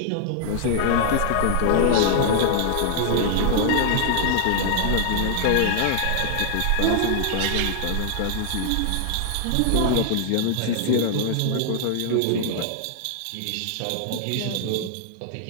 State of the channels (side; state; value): both; different; correlation -0.01